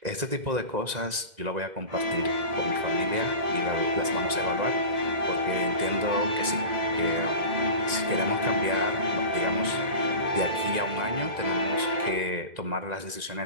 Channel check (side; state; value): left; late; 1.9 ms